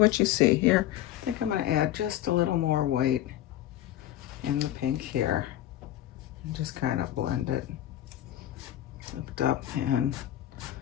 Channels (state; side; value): quieter; right; 13.1 dB